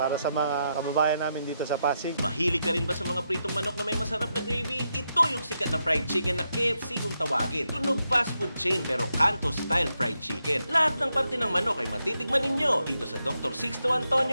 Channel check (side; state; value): both; inverted; correlation -0.84